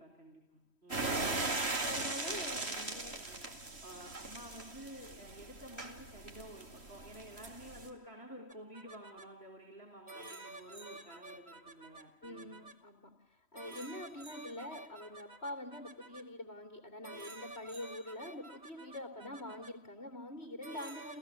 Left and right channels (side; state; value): right; late; 3.1 ms